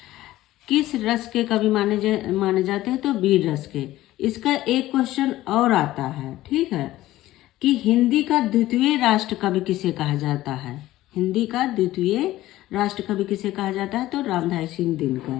किस रस के कवि माने जाते हैं? तो वीर रस के। इसका एक क्वेश्चन और आता है, ठीक है, कि हिंदी का द्वितीय राष्ट्र कवि किसे कहा जाता है? हिंदी का द्वितीय राष्ट्र कवि किसे कहा जाता है? तो रामधारी सिंह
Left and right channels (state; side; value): quieter; right; 15.7 dB